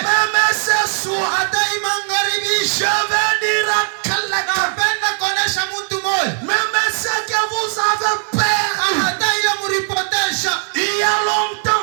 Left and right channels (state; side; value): silent; left; 57 dB below the other